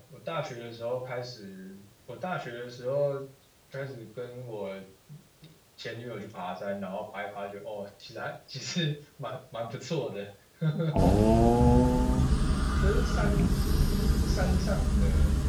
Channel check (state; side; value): identical; both; correlation 1.00